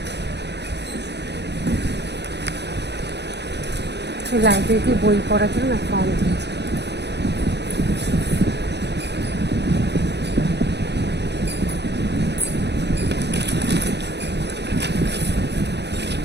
লাইব্রেরিতে বই পড়ার জন্য ফর্ম দিয়েছে।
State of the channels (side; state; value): left; late; 0.50 ms